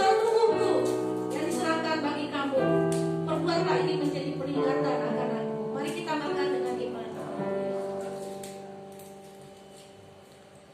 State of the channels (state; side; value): identical; both; correlation 1.00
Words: tubuhku yang diserahkan bagi kamu, perbuatlah ini menjadi peringatan akan aku. Mari kita makan dengan iman.